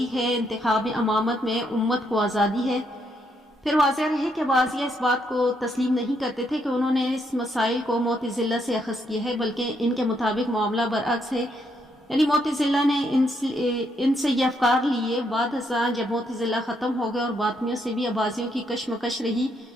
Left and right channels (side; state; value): both; normal; correlation 0.75